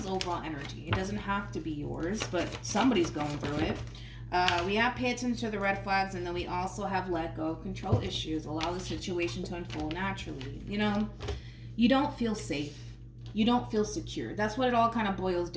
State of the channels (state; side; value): identical; both; correlation 1.00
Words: overall energy. It doesn't have to be yours, but somebody's going through it. We have pay attention to the red flags, and then we also have let go of control issues. Allow the situation to unfold naturally. You don't feel safe. You don't feel secure. That's what it all kind of boils